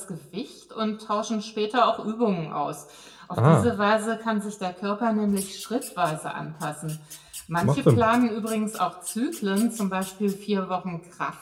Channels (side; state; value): both; identical; correlation 1.00